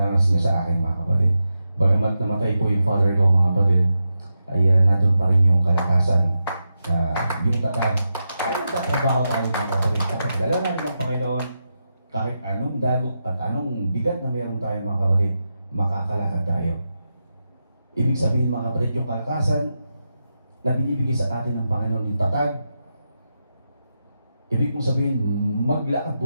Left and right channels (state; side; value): inverted; both; correlation -0.88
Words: niya sa akin mga kapatid. Bagamat namatay po yung father ko mga kapatid, ay nandun pa rin yung kalakasan na yung tatag. Ay nagtatrabaho tayo mga kapatid. Kapag dala natin ng Panginoon, kahit anong dagok at anong bigat na meron tayo mga kapatid, makakalakad tayo. Ibig sabihin mga kapatid, yung kalakasan na binibigay sa atin ng Panginoon, yung tatag, ibig mong sabihin, maglakad